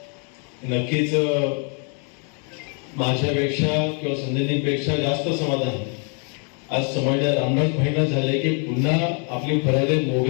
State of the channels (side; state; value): right; quieter; 39.0 dB